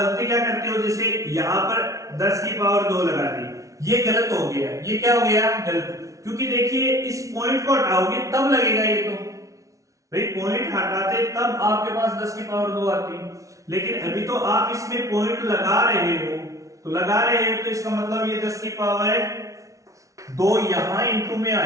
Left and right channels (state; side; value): late; left; 0.16 ms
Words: क्या करते हो, जैसे यहां पर 10 की पावर 2 लगा दी, ये गलत हो गया। ये क्या हो गया गलत, क्योंकि देखिए इस पॉइंट को हटाओगे तब लगेगा ये। तो भाई पॉइंट हटाते तब आपके पास 10 की पावर 2 आती, लेकिन अभी तो आप इसमें पॉइंट लगा रहे हो। तो लगा रहे हो तो इसका मतलब ये 10 की पावर 2 यहां इंटू में